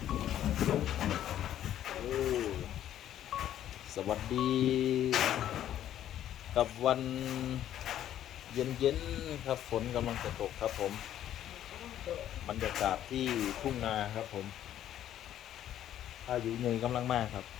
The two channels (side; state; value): right; quieter; 11.4 dB